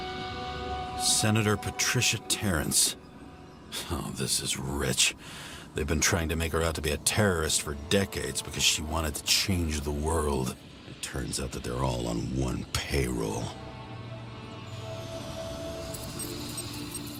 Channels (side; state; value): both; identical; correlation 1.00